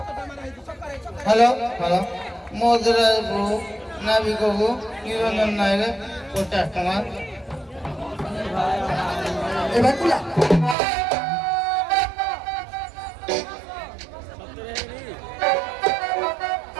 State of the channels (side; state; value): left; drops out; at 10.8 s